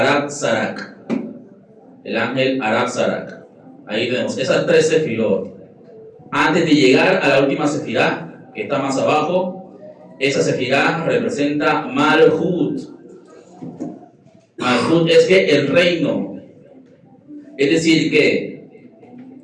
Sarak, el ángel Arab Sarak. Ahí tenemos esas tres sefirot. Antes de llegar a la última sefirá, que está más abajo, esa sefirá representa Malhut. Malhut es que el reino. Es decir, que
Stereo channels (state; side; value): identical; both; correlation 1.00